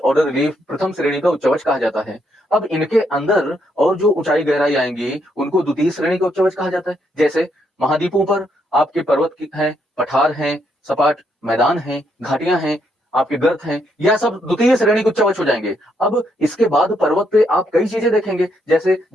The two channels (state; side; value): normal; both; correlation 0.75